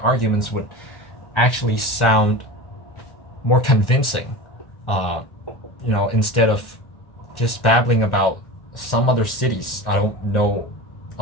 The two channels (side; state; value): right; late; 1.4 ms